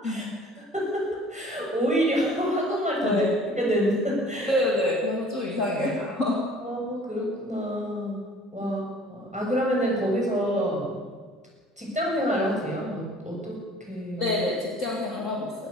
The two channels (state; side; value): normal; both; correlation 0.51